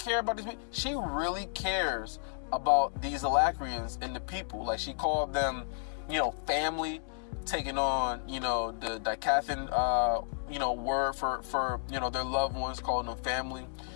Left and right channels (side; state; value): right; silent; digital silence